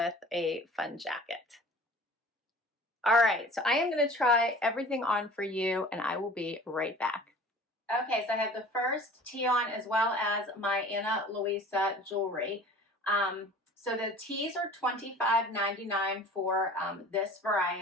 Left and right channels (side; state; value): both; normal; correlation 0.44